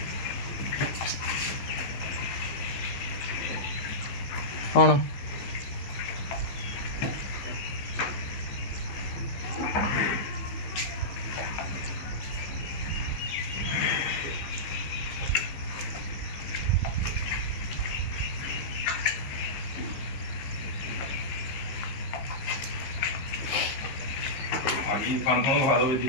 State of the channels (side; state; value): right; late; 15 ms